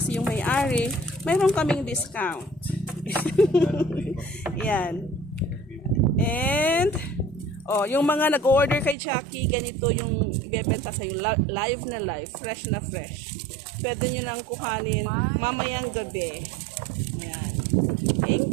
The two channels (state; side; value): drops out; left; at 9.0 s